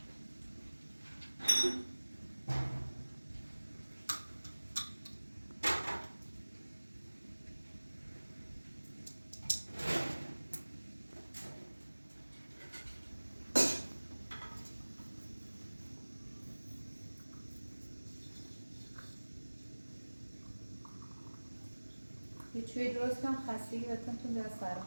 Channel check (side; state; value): both; inverted; correlation -1.00